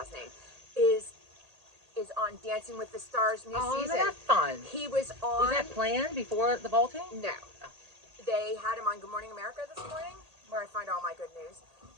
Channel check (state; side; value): late; left; 1.8 ms